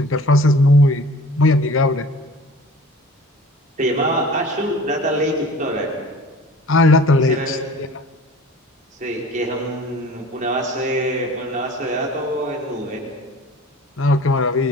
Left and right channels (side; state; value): both; normal; correlation 0.45